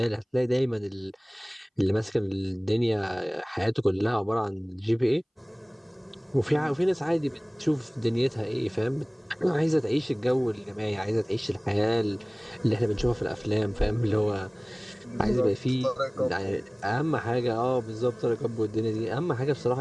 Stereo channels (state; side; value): identical; both; correlation 1.00